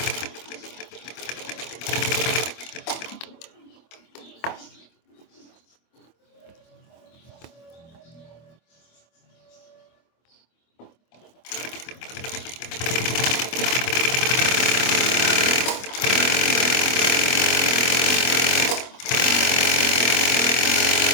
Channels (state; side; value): late; right; 25 ms